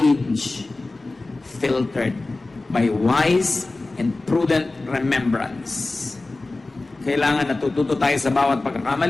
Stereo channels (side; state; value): right; quieter; 3.2 dB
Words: filtered by wise and prudent remembrance. Kailangan natututo tayo sa bawat